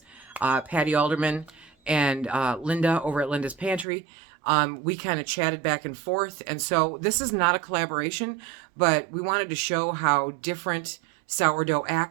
Patty Alderman and Linda over at Linda's Pantry, we kind of chatted back and forth, and so this is not a collaboration, but we wanted to show how different sourdough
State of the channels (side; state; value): left; drops out; at 3.9 s